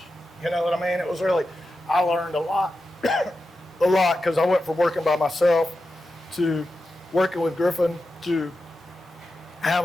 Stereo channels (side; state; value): both; normal; correlation 0.90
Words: You know what I mean? It was really. I learned a lot, because I went from working by myself to working with Griffin to